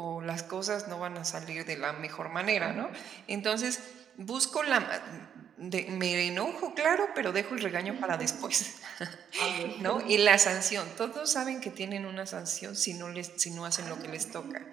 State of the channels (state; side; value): quieter; left; 8.6 dB